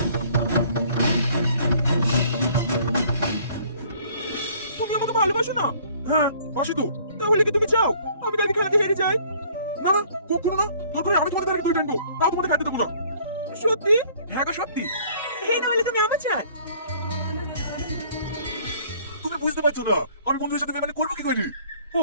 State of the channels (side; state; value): both; inverted; correlation -0.56